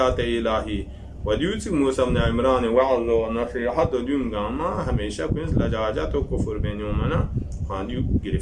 الهی و دیوتی موسی بن عمران وعظ و نصیحت و دیونگاما همیشه کنیز لجاجت و کفر بینیومنا خواندیو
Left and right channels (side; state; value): both; identical; correlation 1.00